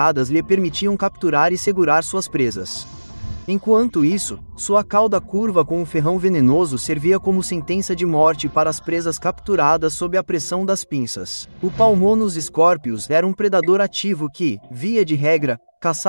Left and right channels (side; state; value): both; inverted; correlation -1.00